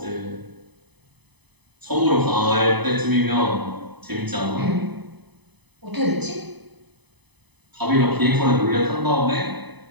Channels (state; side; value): late; left; 0.99 ms